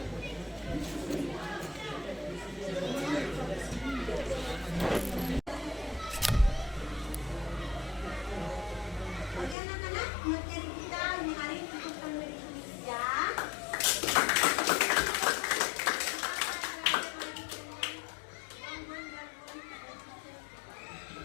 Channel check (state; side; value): drops out; right; at 9.6 s